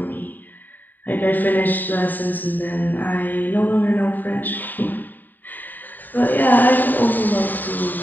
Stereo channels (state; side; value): late; right; 0.089 ms